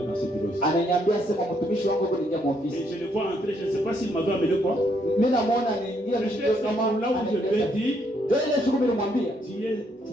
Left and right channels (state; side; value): normal; both; correlation 0.72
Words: dans ce bureau. Ananiambia sema mtumishi wangu yuko nje kwa Et ofisi. je le vois entrer, je ne sais pas s'il m'avait amené quoi. Mimi namuona anaingia Je ndio fais kama là où je lui ai dit, ndio ile siku mimi nimwambia, tu es